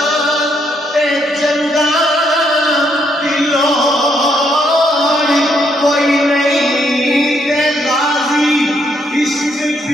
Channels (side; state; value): both; normal; correlation 0.73